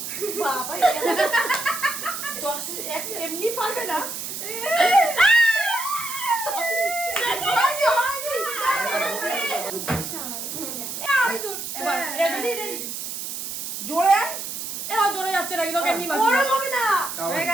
বাবা এমনি পারবে না। এবার রেডি রেডি জোরে এবার জোরে যাচ্ছে নাকি তোকে এমনি মারবি গরম হবে না। হয়ে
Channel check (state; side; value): noise; right; hiss, 6 dB below the sound